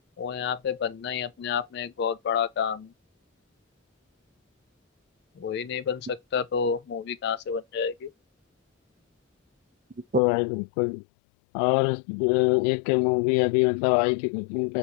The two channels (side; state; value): right; drops out; at 10.2 s